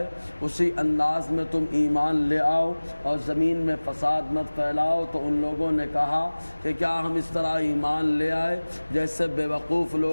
اسی انداز میں تم ایمان لے آؤ اور زمین میں فساد مت پھیلاؤ۔ تو ان لوگوں نے کہا کہ کیا ہم اس طرح ایمان لے آئے جیسے بے وقوف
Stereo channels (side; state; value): both; inverted; correlation -1.00